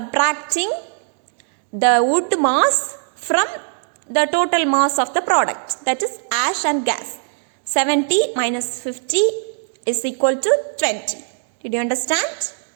the wood mass from the total mass of the product, that is ash and gas. 70 minus 50 is equal to 20. Did you understand?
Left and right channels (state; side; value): silent; left; digital silence